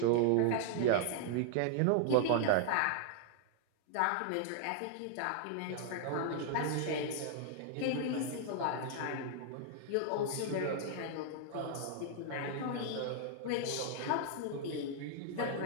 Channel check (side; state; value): both; different; correlation -0.01